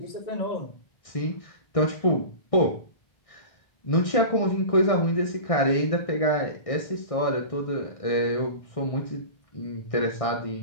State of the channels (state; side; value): late; right; 1.6 ms